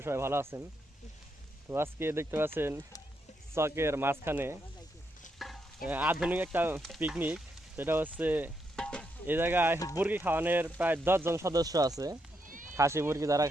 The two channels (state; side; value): normal; both; correlation 0.80